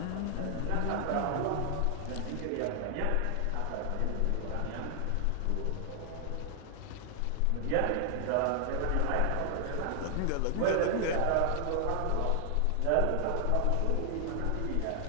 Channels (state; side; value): different; both; correlation 0.00